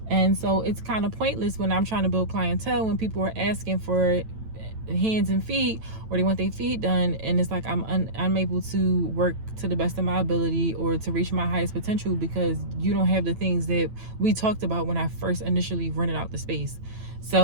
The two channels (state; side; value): late; left; 9.0 ms